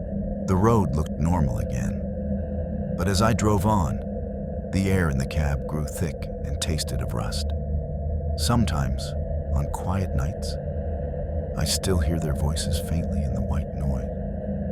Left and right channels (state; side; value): identical; both; correlation 1.00